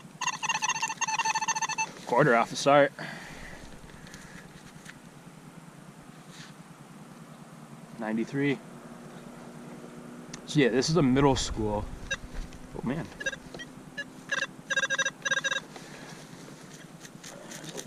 Quarter off the start. $93. So yeah, this is a middle school. Oh man.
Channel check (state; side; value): identical; both; correlation 1.00